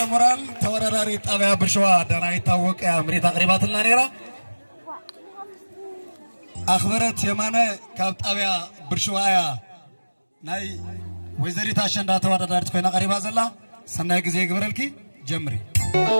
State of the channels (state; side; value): inverted; both; correlation -1.00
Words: ሞራል ተወዳዳሪ ጣብያ ብርሸዋ ዳናይት ታወቀ አምሪት አቅሪባትና ነራ አኽበረት የማነ ካብ ጣብያ ብርሸዋ ያ ናይ ወይዘሪት አሸንዳ ተወዳዳሪት ኮይና ቀሪባ ዘላ ሰናይ ጊዜ ይግበረልኪ ጀምሪ